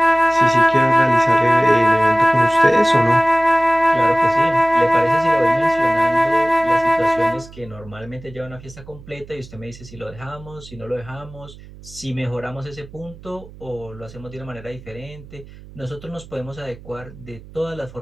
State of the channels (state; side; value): noise; right; hum, 19 dB below the sound